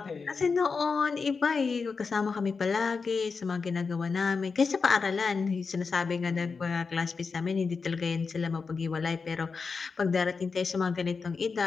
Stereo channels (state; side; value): quieter; right; 4.9 dB